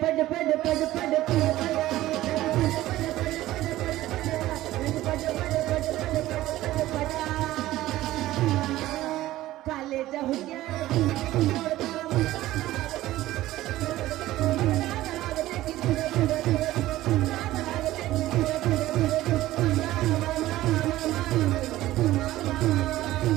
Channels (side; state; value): left; quieter; 15.7 dB